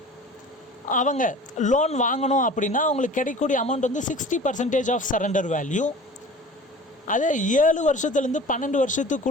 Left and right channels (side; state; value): both; normal; correlation 0.41